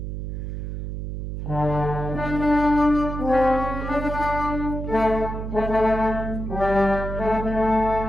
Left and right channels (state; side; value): noise; right; hum, 5 dB below the sound